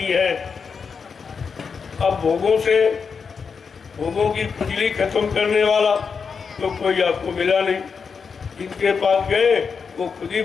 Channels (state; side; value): quieter; right; 5.7 dB